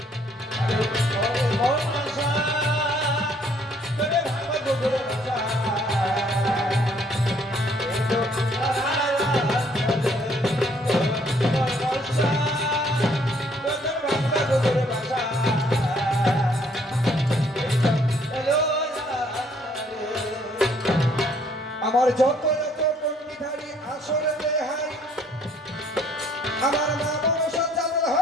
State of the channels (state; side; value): normal; both; correlation 0.64